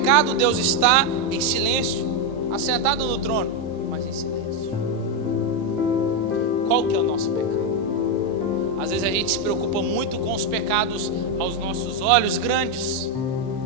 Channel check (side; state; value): both; normal; correlation 0.04